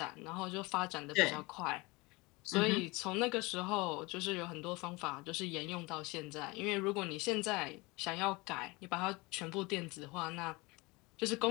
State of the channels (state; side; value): quieter; right; 24.4 dB